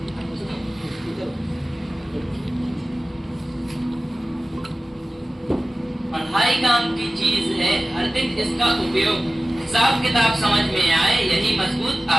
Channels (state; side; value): normal; both; correlation 0.96